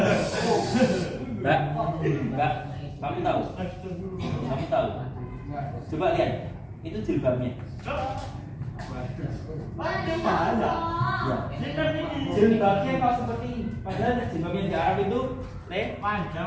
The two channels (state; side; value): identical; both; correlation 1.00